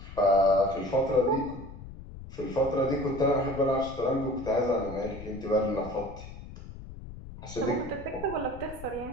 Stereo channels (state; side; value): noise; left; rumble, 13 dB below the sound